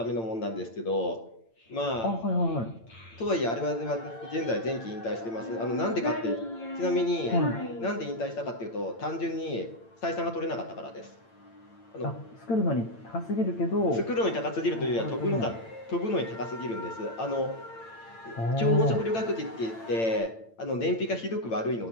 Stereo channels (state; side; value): late; right; 8.9 ms